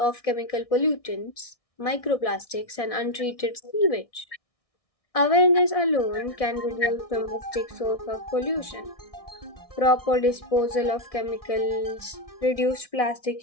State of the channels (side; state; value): right; late; 1.6 ms